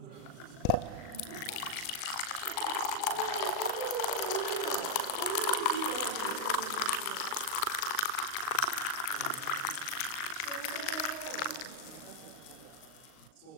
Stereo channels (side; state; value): right; late; 39 ms